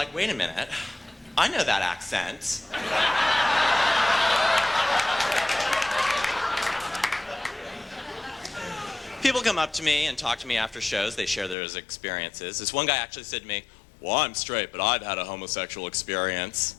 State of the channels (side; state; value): right; drops out; at 11.6 s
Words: wait a minute, I know that accent. People come up to me and talk to me after shows. They share their experiences. This one guy actually said to me, well, I'm straight, but I've had a homosexual experience.